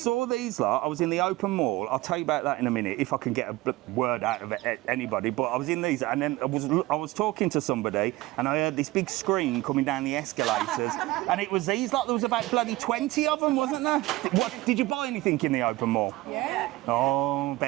these lot. I was in the open mall. I'll tell you about that in a minute if I can get a word out of anybody. But I was in these, and then I was talking to somebody, and I heard this big scream coming down the escalators, and it was these lot. There was about bloody 20 of them, wasn't there? Did you buy anything in the open mall? Yeah. Oh,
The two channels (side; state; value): left; quieter; 19.1 dB